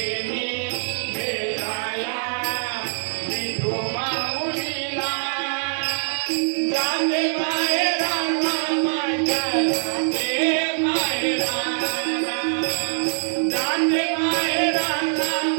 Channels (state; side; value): silent; left; digital silence